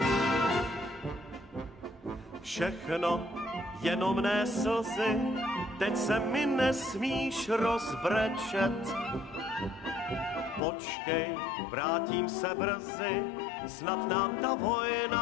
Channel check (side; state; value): right; drops out; at 10.6 s